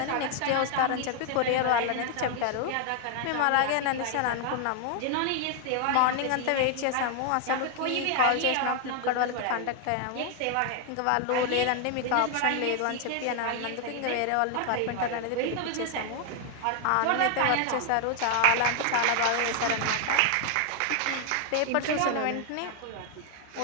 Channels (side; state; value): both; different; correlation 0.00